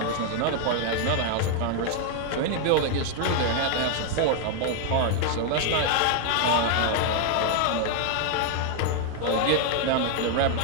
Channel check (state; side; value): different; both; correlation 0.00